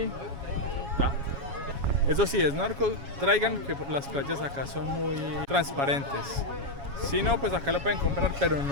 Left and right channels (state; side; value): late; left; 7.2 ms